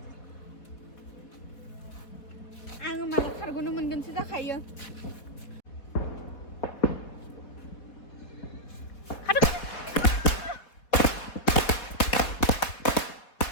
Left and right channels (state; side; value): late; right; 4.1 ms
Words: आङो माला खारग'नो मोनगोनसो जाखायो